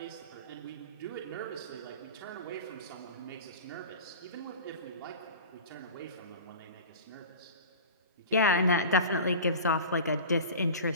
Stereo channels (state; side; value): inverted; both; correlation -0.36